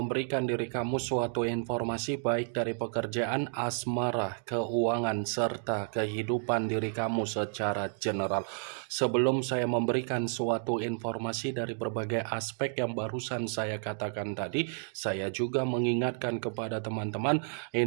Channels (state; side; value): silent; left; 57 dB below the other